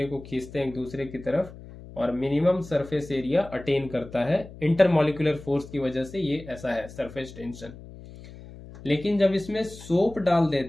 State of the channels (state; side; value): noise; left; hum, 16 dB below the sound